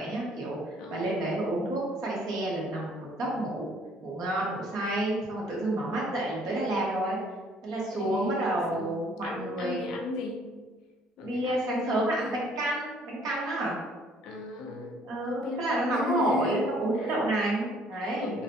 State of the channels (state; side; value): normal; both; correlation 0.60